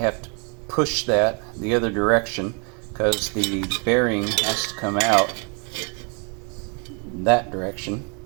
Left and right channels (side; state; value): left; quieter; 36.1 dB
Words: to push that the other direction because the bearing has to come out that direction.